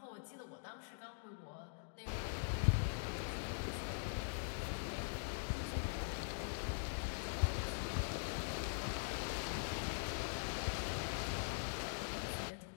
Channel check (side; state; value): right; silent; digital silence